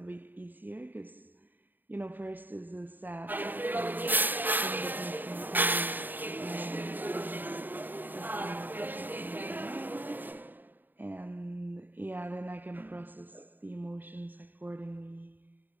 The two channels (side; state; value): left; late; 0.090 ms